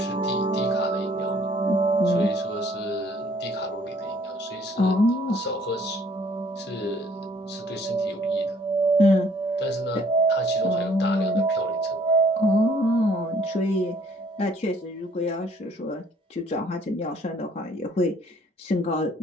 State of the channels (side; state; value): both; normal; correlation 0.60